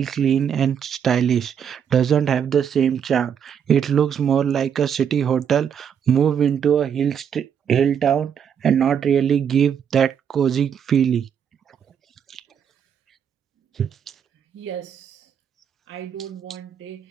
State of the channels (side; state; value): left; quieter; 8.1 dB